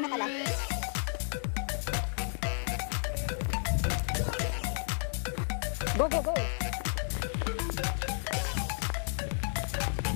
pala. Go, go, go!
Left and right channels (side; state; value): right; silent; 56 dB below the other